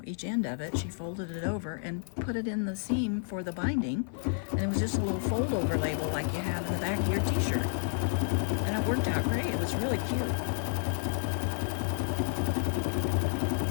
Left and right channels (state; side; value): silent; right; 57 dB below the other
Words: each end of it, she folded it over and put it in the seam for the binding, and it was just a little fold over label like you have in the back of your t-shirt, and it worked out great. It was really cute.